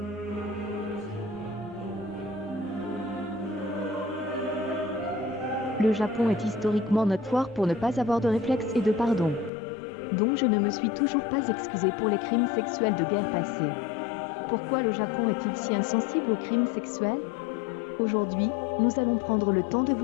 Le Japon est historiquement notoire pour ne pas avoir de réflexe et de pardon. Donc je ne me suis toujours pas excusée pour les crimes sexuels de guerre passée. Pourquoi le Japon est-il si insensible aux crimes sexuels ? Aujourd'hui, nous allons prendre le temps de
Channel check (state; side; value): drops out; right; at 9.5 s